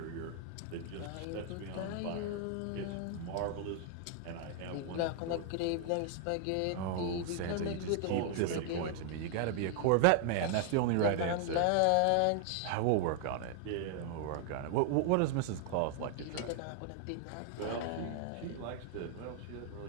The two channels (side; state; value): both; different; correlation 0.00